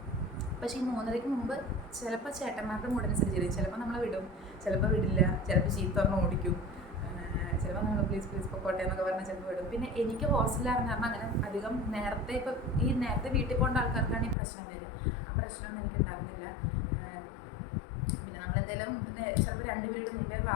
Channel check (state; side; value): drops out; right; at 14.4 s